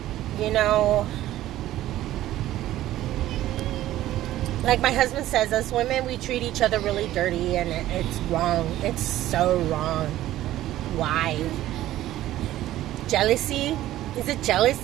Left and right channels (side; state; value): left; quieter; 14.2 dB